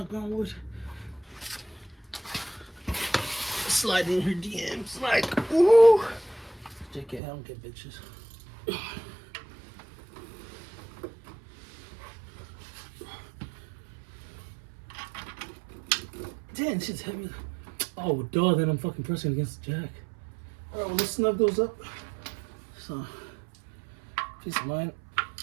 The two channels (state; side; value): drops out; left; at 7.2 s